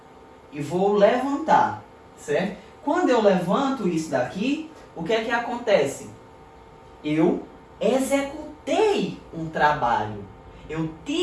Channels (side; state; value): both; identical; correlation 1.00